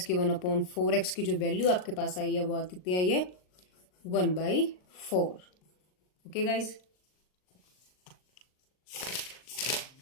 के 1 अपॉन 4x की जो वैल्यू आपके पास आई है वो कितनी आई है 1/4। ओके गाइज,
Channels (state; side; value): late; right; 39 ms